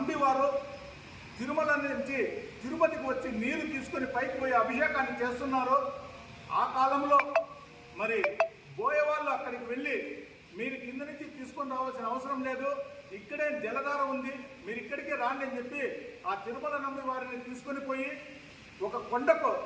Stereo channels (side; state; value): both; identical; correlation 1.00